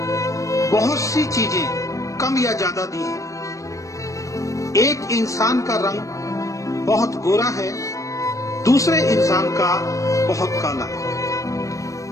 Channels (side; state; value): right; late; 0.16 ms